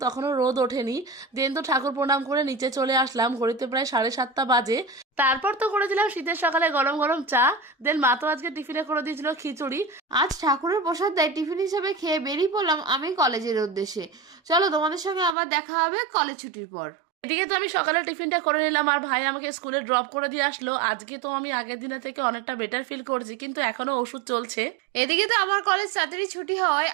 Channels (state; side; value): drops out; left; at 15.4 s